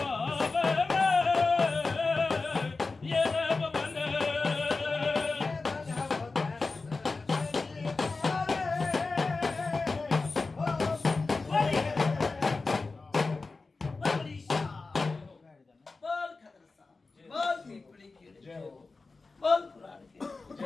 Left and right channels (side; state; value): right; quieter; 3.8 dB